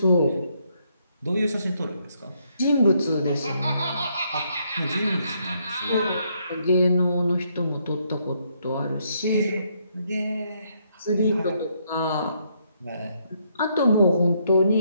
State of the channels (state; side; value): inverted; both; correlation -0.73